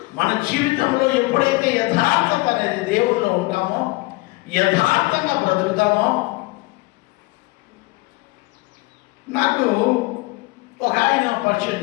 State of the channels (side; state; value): right; quieter; 23.1 dB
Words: మన జీవితంలో ఎప్పుడైతే యథార్థత అనేది దేవుడిలో ఉంటామో, యథార్థంగా బ్రతుకుతామో. నాకు ఒక ఆయన పరిచయం